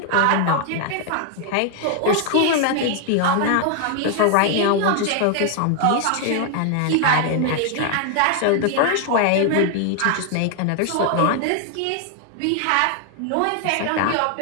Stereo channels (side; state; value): both; different; correlation 0.00